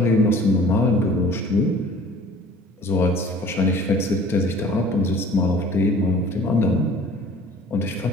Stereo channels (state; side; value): normal; both; correlation 0.48